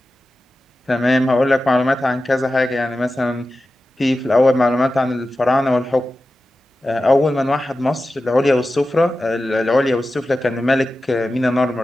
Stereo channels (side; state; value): both; normal; correlation 0.93